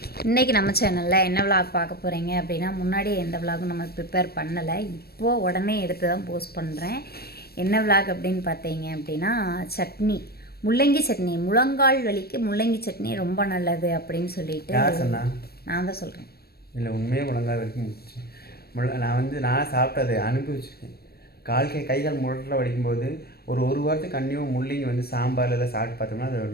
இன்றைக்கி நம்ம சேனலில் என்ன விளாக் பார்க்க போகிறீங்க அப்படின்னா, முன்னாடியே எந்த விளாகும் நம்ம ப்ரிப்பேர் பண்ணலை, இப்போது உடனே எடுத்து தான் போஸ்ட் பண்ணுறேன். என்ன விளாக் அப்படின்னு பார்த்தீங்க அப்படின்னா, சட்னி, முள்ளங்கி சட்னி. முழங்கால் வலிக்கு முள்ளங்கி சட்னி ரொம்ப நல்லது அப்படின்னு சொல்லிட்டு நான் தான் சொல்கிறேன். இல்லை, உண்மையே முழங்கால் வலிக்கு நான் சாப்பிட்டது அனுபவிச்சிருக்கேன். கைகால் முழட்டில் வலிக்கும்போது ஒரு வாரத்துக்கு கண்டிப்பாக முள்ளங்கி சாம்பாரில் எல்லாம் சாப்பிட்டு பார்த்தோம்னா அது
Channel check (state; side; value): late; right; 0.46 ms